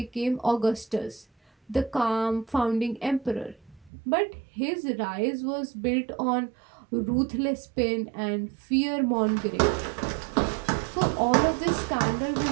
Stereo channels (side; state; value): left; drops out; at 3.9 s